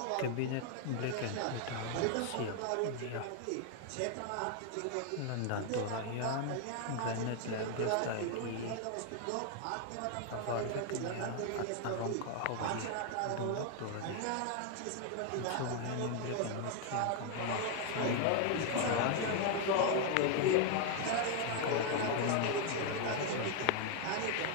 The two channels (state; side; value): different; both; correlation 0.00